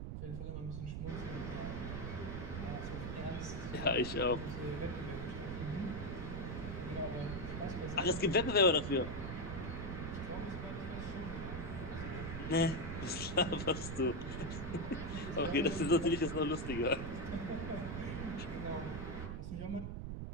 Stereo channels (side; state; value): right; noise; rumble, 5 dB below the sound